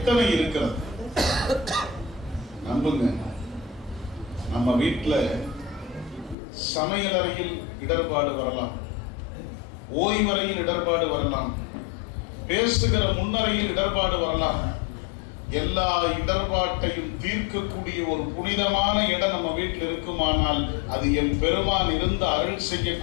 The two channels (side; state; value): right; drops out; at 6.4 s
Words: இருக்கிறது? நம்புங்க, நம்ம வீட்டுல சமையல் அறையில் இடர்பாடு வரலாம், ஓய்வறையில் இடர்பாடு வரலாம், பேசுகிற முன்னறையில் இடர்பாடு வரலாம். எல்லா இடர்பாட்டையும் தீர்க்கக்கூடிய ஒரு புனிதமான இடம் நம்ம வீட்டில் இருக்குமானால் அது என் பெருமான் இருந்து அருள்